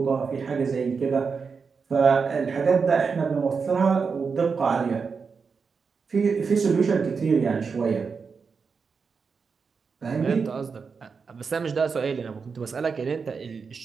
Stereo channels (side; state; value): left; quieter; 5.4 dB